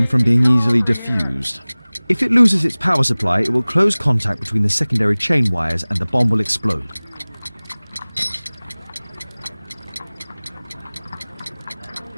from being easily diffused. If it loses its power supply, it will close contact between the secondary chain wires and the bomb will explode.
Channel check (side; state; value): both; inverted; correlation -1.00